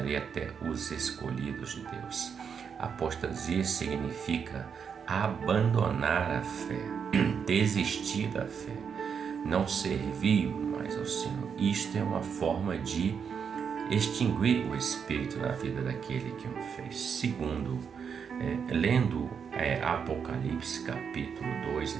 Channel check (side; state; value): left; quieter; 6.8 dB